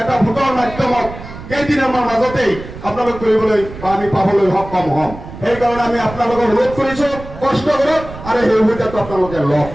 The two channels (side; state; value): right; noise; rumble, 13 dB below the sound